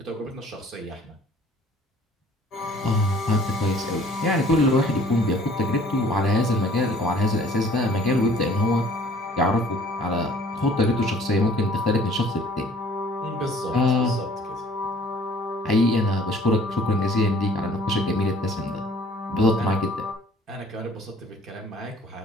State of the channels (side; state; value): both; normal; correlation 0.54